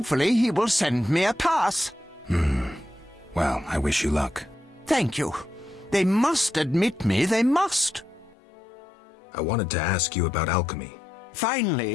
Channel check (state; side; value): drops out; right; at 8.3 s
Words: he will send me a pass. Well, I wish you luck. Thank you. They must admit me, they must. I wanted to ask you about alchemy.